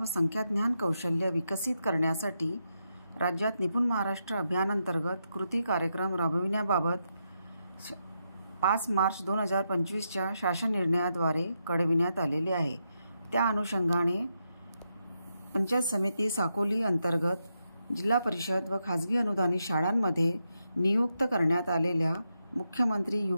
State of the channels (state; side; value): inverted; both; correlation -0.84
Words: संख्याज्ञान कौशल्य विकसित करण्यासाठी राज्यात निपुण महाराष्ट्र अभियानांतर्गत कृती कार्यक्रम राबविण्याबाबत 5 मार्च 2025च्या शासन निर्णयाद्वारे कळविण्यात आलेले आहे। त्या अनुषंगाने पंचायत समिती साकोली अंतर्गत जिल्हा परिषद व खाजगी अनुदानित शाळांमध्ये नियुक्त करण्यात आलेल्या मुख्यमंत्री